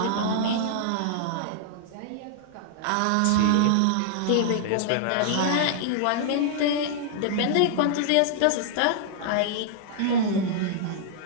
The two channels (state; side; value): different; both; correlation -0.01